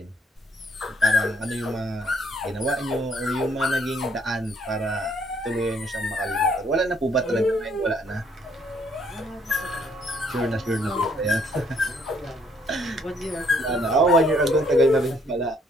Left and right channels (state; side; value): normal; both; correlation 0.66